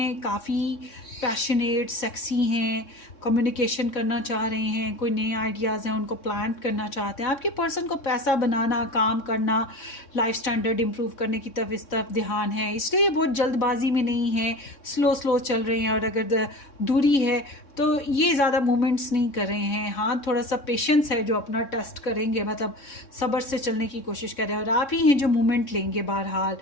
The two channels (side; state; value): right; late; 3.6 ms